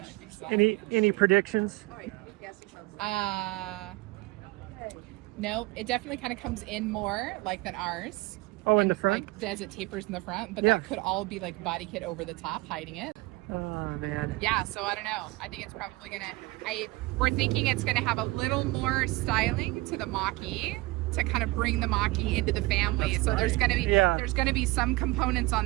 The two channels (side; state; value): left; quieter; 21.8 dB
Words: you Any predictions? No, it definitely kind of comes in more like than ours. Oh, in And, the front? Like as it tapers in the front, but Yeah. that could all be like body kit over the top hiding it. Oh man. Yeah, so I don't know. I think it's probably we're thinking it's gonna have a little more styling to the Mach-E to kind of bring the Mach-E into the family. So there's going to be there's going to be some components